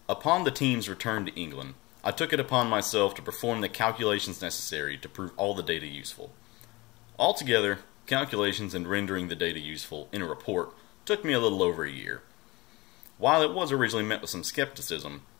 Upon the team's return to England, I took it upon myself to perform the calculations necessary to prove all the data useful. Altogether, calculations and rendering the data useful in a report took me a little over a year. While it was originally met with some skepticism,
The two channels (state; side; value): quieter; right; 22.6 dB